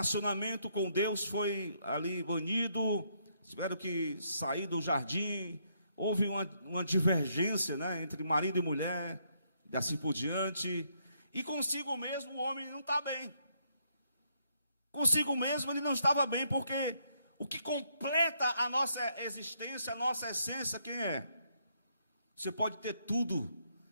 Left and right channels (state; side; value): inverted; both; correlation -0.73